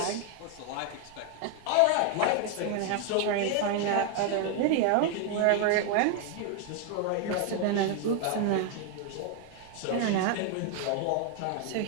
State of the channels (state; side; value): different; both; correlation 0.00